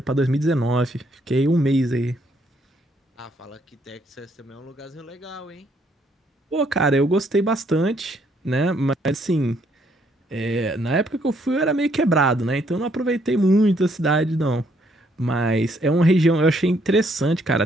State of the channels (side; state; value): both; normal; correlation 0.70